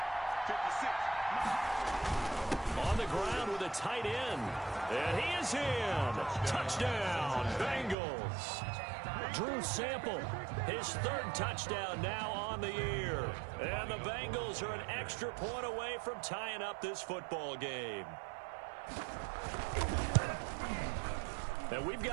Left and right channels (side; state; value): left; drops out; at 8.0 s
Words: On the ground with a tight end. And he is in. Touchdown, Bengals. Drew Sample, his 3rd touchdown now on the year. And the Bengals are an extra point away from tying up this football game. And we've